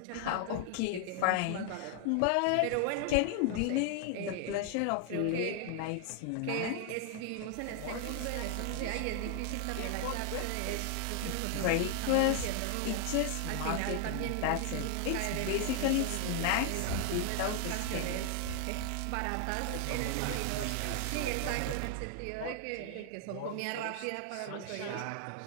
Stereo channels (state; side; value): different; both; correlation 0.00